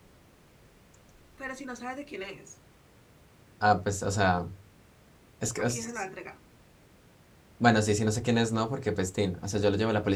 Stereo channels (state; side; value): identical; both; correlation 1.00